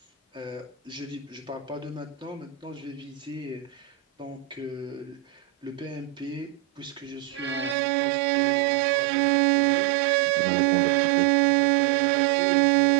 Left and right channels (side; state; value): left; drops out; at 7.8 s